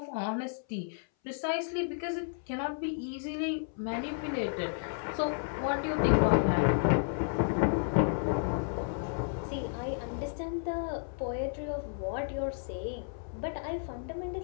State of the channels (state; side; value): silent; right; 56 dB below the other